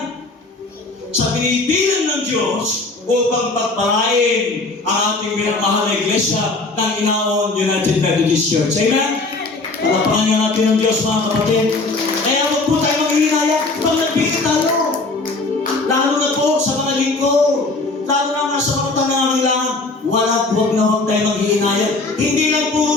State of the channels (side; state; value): right; quieter; 3.4 dB